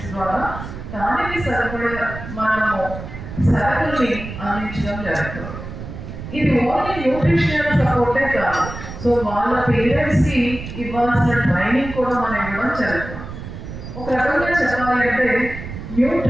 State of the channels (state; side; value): noise; right; rumble, 10 dB below the sound